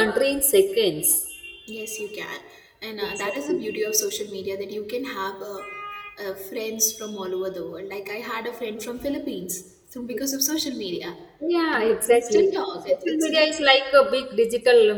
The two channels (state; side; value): identical; both; correlation 1.00